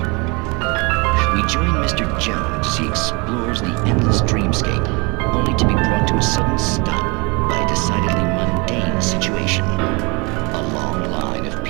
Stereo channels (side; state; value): left; quieter; 28.6 dB